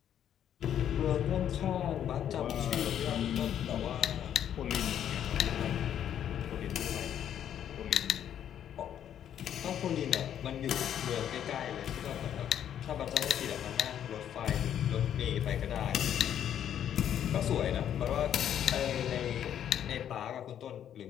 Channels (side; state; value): right; quieter; 9.9 dB